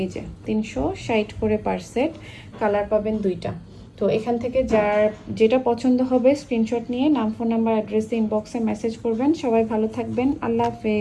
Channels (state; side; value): identical; both; correlation 1.00